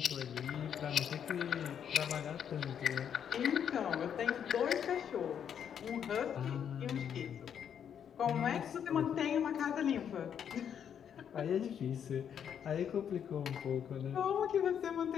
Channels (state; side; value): quieter; right; 8.5 dB